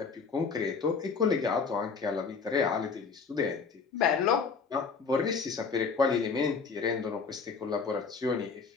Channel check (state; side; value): quieter; right; 5.3 dB